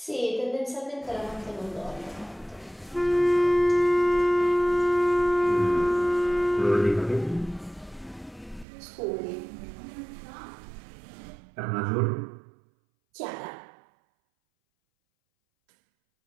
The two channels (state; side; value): drops out; left; at 8.7 s